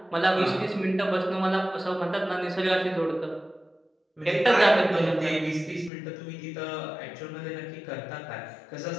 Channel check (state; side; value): drops out; right; at 5.9 s